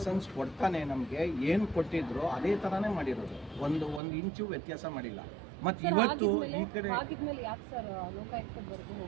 ಕೊಡ್ತಾನೆ. ನಮಗೆ ಏನು ಕೊಟ್ಟಿದ್ರು ಅದೇ ಥರನೇ ಮಾಡಿರೋದು, ಒಂದು ಇಂಚು ವ್ಯತ್ಯಾಸ ಮಾಡಿಲ್ಲ. ಮತ್ತು ಇವತ್ತು ಈ ಕಡೆ ಆಗಿದ್ಮೇಲೆ ಯಾಕೆ ಸರ್ ಲೋಕಾಯುಕ್ತದವರೆಗೂ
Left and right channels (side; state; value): left; drops out; at 4.0 s